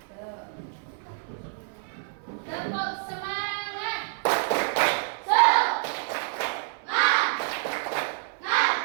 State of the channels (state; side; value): silent; left; 57 dB below the other